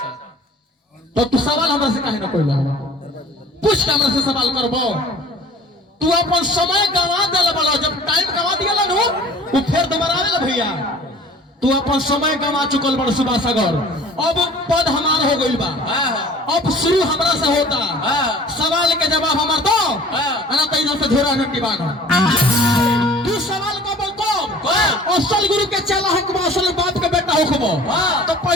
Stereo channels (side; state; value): both; normal; correlation 0.48